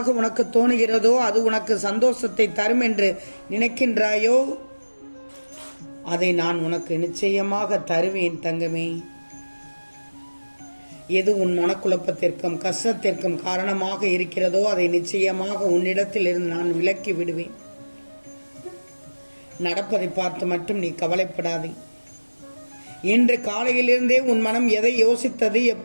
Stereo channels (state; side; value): inverted; both; correlation -1.00